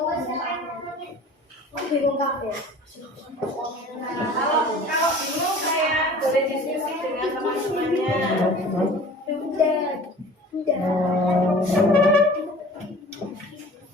Kalau bingung saya boleh diskusi dengan teman-temannya.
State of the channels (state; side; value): normal; both; correlation 0.44